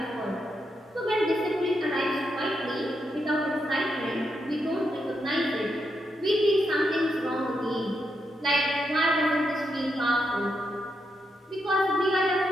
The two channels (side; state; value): both; normal; correlation 0.83